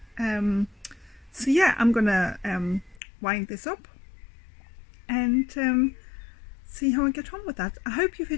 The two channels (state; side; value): drops out; right; at 3.0 s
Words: So yeah, I'm gonna wind this up and see how I get on with that. I hope you've